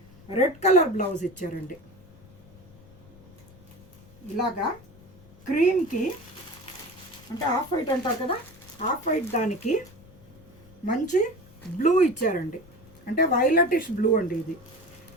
రెడ్ కలర్ బ్లౌజ్ ఇచ్చారండి. ఇలాగా క్రీమ్కి, అంటే ఆఫ్ వైట్ అంటారు కదా, ఆఫ్ వైట్ దానికి మంచి బ్లూ ఇచ్చారండి. అంటే వైలెటిష్ బ్లూ అండి ఇది.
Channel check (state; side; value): noise; left; rumble, 23 dB below the sound